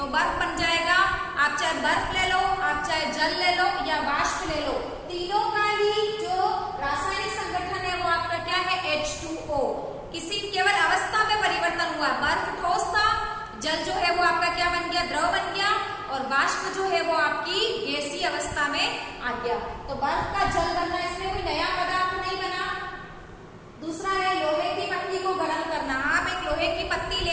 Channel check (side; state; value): both; identical; correlation 1.00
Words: बर्फ बन जाएगा। आप चाहे बर्फ ले लो, आप चाहे जल ले लो या वाष्प ले लो, तीनों का ही जो रासायनिक संगठन है वो आपका क्या है? H2O। किसी केवल अवस्था में परिवर्तन हुआ, बर्फ ठोस था, जल जो है वो आपका क्या बन गया? द्रव बन गया, और वाष्प जो है वो आपकी गैसीय अवस्था में आ गया। तो बर्फ का जल बनना, इसमें कोई नया पदार्थ नहीं बना। दूसरा है लोहे की पत्ती को गर्म करना। आप एक लोहे की पत्ती